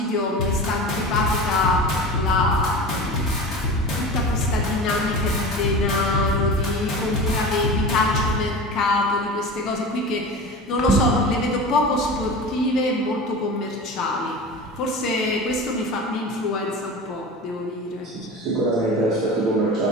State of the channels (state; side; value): normal; both; correlation 0.32